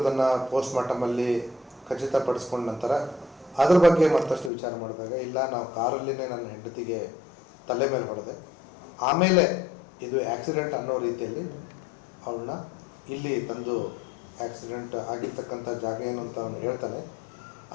ಪೋಸ್ಟ್ ಮಾರ್ಟಮಲ್ಲಿ ಖಚಿತಪಡಿಸ್ಕೊಂಡ ನಂತರ ಅದ್ರ ಬಗ್ಗೆ ಮತ್ತಷ್ಟು ವಿಚಾರ ಮಾಡಿದಾಗ ಇಲ್ಲ, ನಾವು ಕಾರಲ್ಲಿನೇ ನನ್ನ ಹೆಂಡತಿಗೆ ತಲೆ ಮೇಲೆ ಹೊಡೆದೆ, ಆಮೇಲೆ ಇದು ಆಕ್ಸಿಡೆಂಟ್ ಅನ್ನೋ ರೀತಿಯಲ್ಲಿ ಅವಳನ್ನ ಇಲ್ಲಿ ತಂದು ಆಕ್ಸಿಡೆಂಟ್ ಆಗಿರ್ತಕ್ಕಂಥ ಜಾಗ ಏನು ಅಂತ ಅವನು ಹೇಳ್ತಾನೆ,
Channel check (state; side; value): drops out; right; at 4.5 s